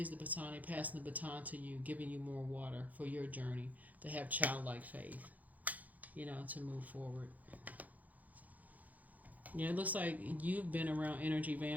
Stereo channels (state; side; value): late; left; 0.079 ms